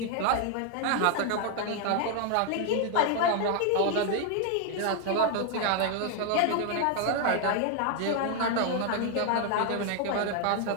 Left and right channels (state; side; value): different; both; correlation 0.00